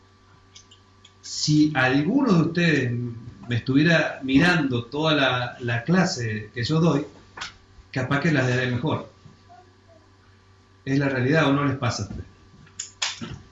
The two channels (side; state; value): both; identical; correlation 1.00